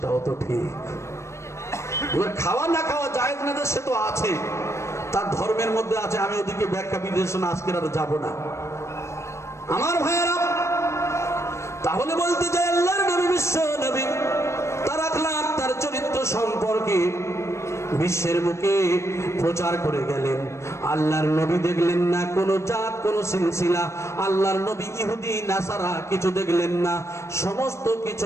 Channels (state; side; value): late; right; 0.13 ms